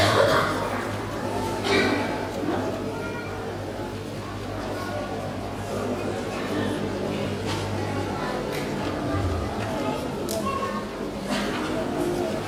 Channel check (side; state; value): both; identical; correlation 1.00